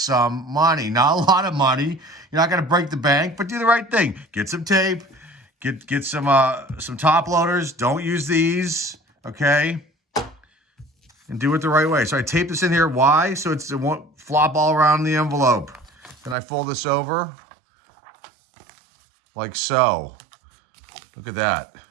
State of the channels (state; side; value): drops out; left; at 16.4 s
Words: money. Not a lot of money. You're not going to break the bank, but do the right thing. Get some tape. Get some top loaders. Don't use these, okay? And do it the right way. So I tape this in here. Why? So it won't flop all around the envelope. Then I fold this over like so. Look at that.